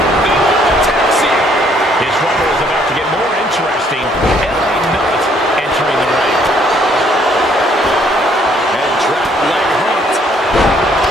Taxi. His rumble is about to get more interesting. LA Knight entering the ring. And drop leg hooked.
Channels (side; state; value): both; normal; correlation 0.65